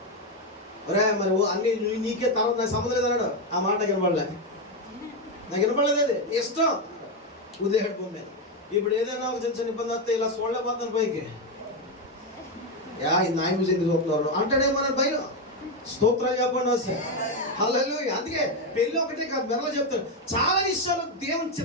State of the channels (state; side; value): normal; both; correlation 0.08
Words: ఒరే మరి అన్ని నీకే తర్వాత నాకు సంబంధం లేదన్నాడు. ఆ మాట వినపడలే, నాకు వినపడలేదు. అది ఇష్టం ఉదయం భూమి. ఇప్పుడు ఏదైనా ఒక చిన్న చిన్న ఇబ్బంది వస్తే ఇలా చూడలేకపోతాను పైకి. ఇది నాయన చూసి ఎందుకు చూస్తున్నారు అంటాడేమో అని భయం. స్తోత్రాలు చెప్పండి వస్తే. హల్లెలూయా. అందుకే పెళ్ళి ఒకటే కాదు, మెరలో చెప్తాను, చాలా విషయాలు దేవుని